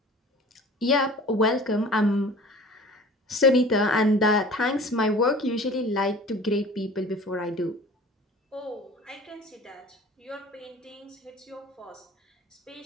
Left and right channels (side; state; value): both; normal; correlation 0.43